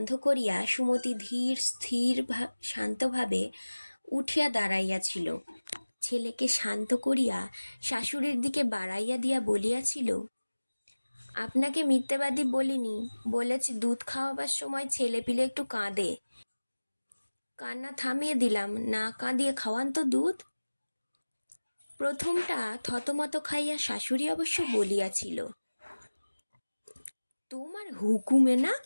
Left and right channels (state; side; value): inverted; both; correlation -1.00